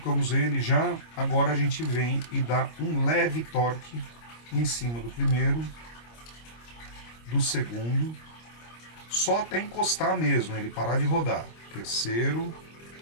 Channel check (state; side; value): late; right; 25 ms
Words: ele já, agora a gente vem e dá um leve torque em cima do primeiro, do segundo, só até encostar mesmo, ele parar de rodar. Terceiro